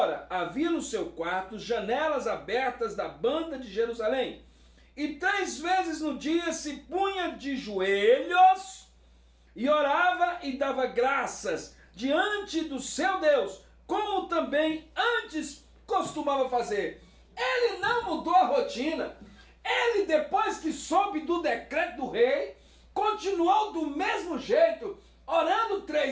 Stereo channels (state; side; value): identical; both; correlation 1.00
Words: havia no seu quarto janelas abertas da banda de Jerusalém, e 3 vezes no dia se punha de joelhos e orava e dava graças diante do seu Deus, como também antes costumava fazer. Ele não mudou a rotina. Ele, depois que soube do decreto do rei, continuou do mesmo jeito, orando